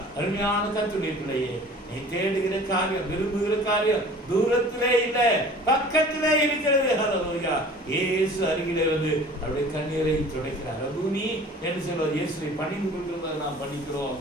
அருமையான கர்த்தருடைய பிள்ளையே, நீ தேடுகிற காரியம், விரும்புகிற காரியம் தூரத்திலே இல்லை, பக்கத்திலே இருக்கிறது. ஹல்லேலூயா. இயேசு அருகிலே வந்து அவருடைய கண்ணீரை துடைக்கிறார். ரபூனி என்று சொல்வார். இயேசுவை பணிந்து கொள்கிறதை நாம் படிக்கிறோம்.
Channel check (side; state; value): both; normal; correlation 0.45